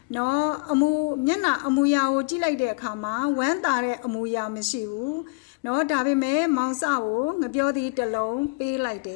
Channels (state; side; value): quieter; right; 30.0 dB